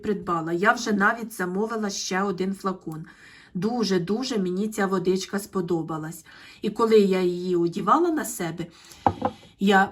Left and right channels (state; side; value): identical; both; correlation 1.00